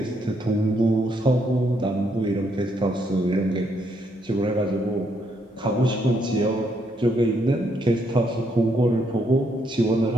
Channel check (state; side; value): normal; both; correlation 0.74